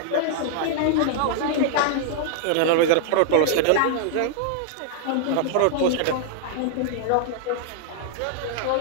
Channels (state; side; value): different; both; correlation -0.01